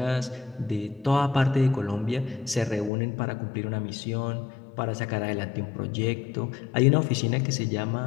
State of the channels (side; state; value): right; drops out; at 2.9 s